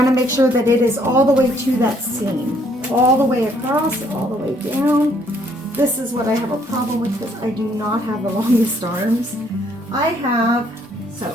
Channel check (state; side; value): normal; both; correlation 0.66